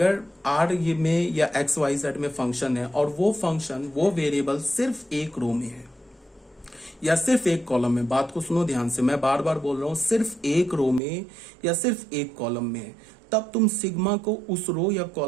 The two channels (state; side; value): drops out; left; at 11.0 s